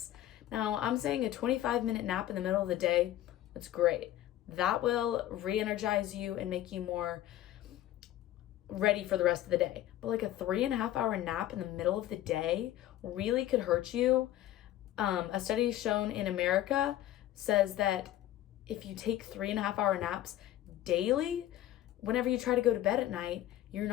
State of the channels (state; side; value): quieter; right; 13.4 dB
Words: Now, I'm saying a 25-minute nap in the middle of the day, that's great. That will re-energize you and make you more ready for the rest of the day. But a 3.5-hour nap in the middle of the day really could hurt you. A study shown in America says that if you take 3.5-hour naps daily, whenever you try to go to bed at night, you're